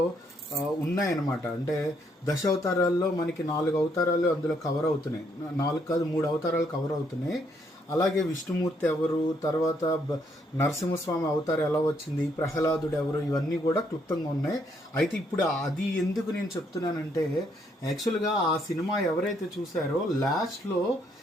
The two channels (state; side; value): normal; both; correlation 0.72